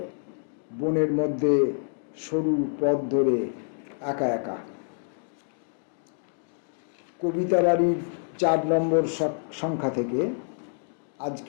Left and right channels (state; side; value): silent; right; digital silence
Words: বনের মধ্যে সরু পথ ধরে একা একা। কবিতা বাড়ির 4 নম্বর সংখ্যা থেকে